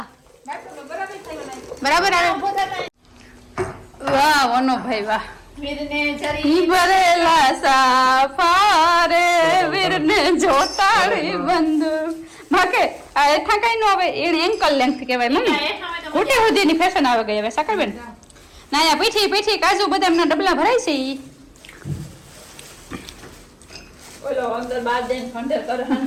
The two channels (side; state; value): both; identical; correlation 1.00